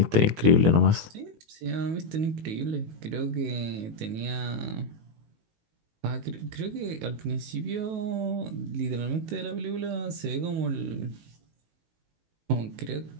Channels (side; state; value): left; late; 19 ms